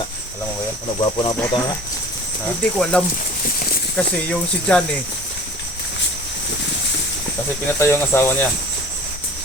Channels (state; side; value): normal; both; correlation 0.44